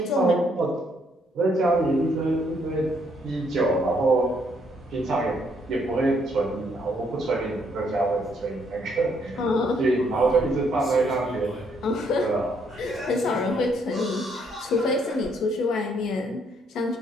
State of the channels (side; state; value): both; normal; correlation 0.70